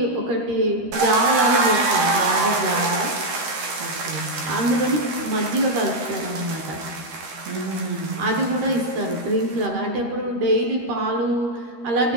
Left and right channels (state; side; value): late; left; 13 ms